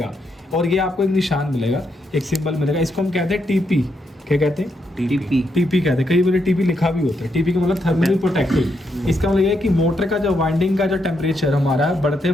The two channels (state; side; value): normal; both; correlation 0.79